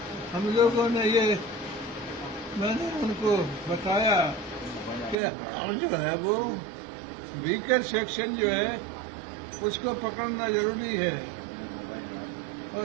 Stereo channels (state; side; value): drops out; left; at 5.2 s